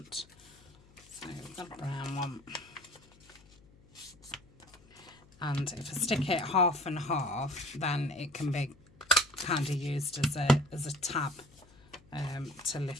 So we've got a brown one. And if I stick it half and half, then it can be kind of used as a tab to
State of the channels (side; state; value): left; noise; hum, 26 dB below the sound